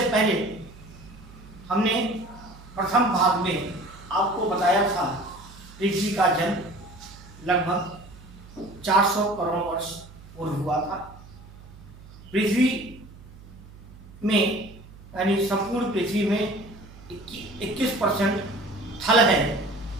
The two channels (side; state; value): right; noise; hum, 20 dB below the sound